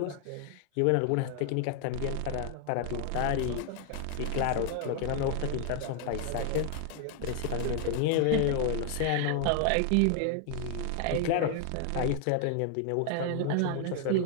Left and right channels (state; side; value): different; both; correlation 0.00